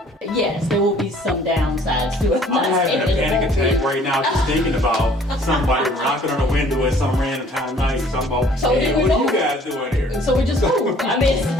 Yes, there will be some downsides to it. I'm having a panic attack right now just thinking about somebody knocking on the window at some random time of night. Talking about, So hey, then we what are you move. guys doing here? So we just moved. I mean, it's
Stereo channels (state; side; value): normal; both; correlation 0.56